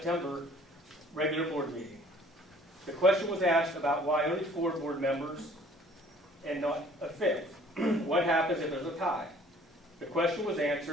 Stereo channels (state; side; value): normal; both; correlation 0.55